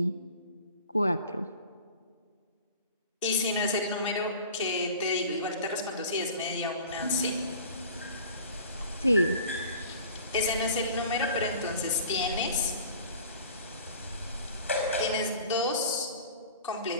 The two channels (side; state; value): both; inverted; correlation -0.43